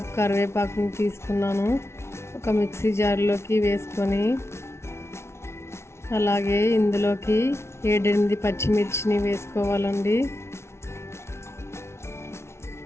కరివేపాకుని తీసుకున్నాను. ఒక మిక్సీ జార్లోకి వేసుకొని అలాగే ఇందులోకి 7-8 పచ్చిమిర్చిని వేసుకోవాలండి.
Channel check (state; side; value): late; right; 0.13 ms